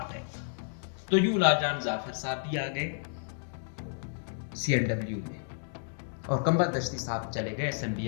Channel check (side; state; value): right; silent; digital silence